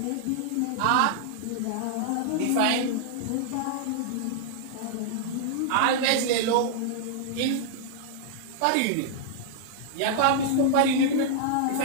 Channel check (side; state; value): both; different; correlation -0.01